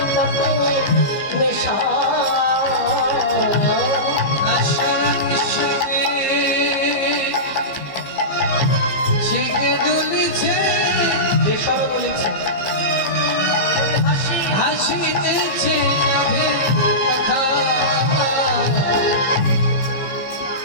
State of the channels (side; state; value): right; late; 15 ms